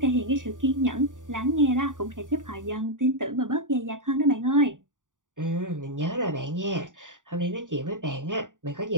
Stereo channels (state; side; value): late; left; 0.88 ms